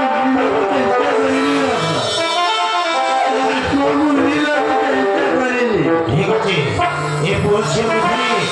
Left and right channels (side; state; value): both; identical; correlation 1.00